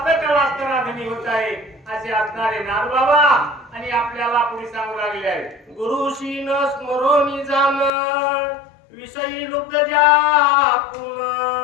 असणारा धनी होत आहे असे असणारे नागबाबा आणि आपल्याला पुढे सांगू लागले आहे। गुरुशी न स्मरोनी जाण, विषयी लुब्ध जापून,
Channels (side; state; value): right; drops out; at 7.9 s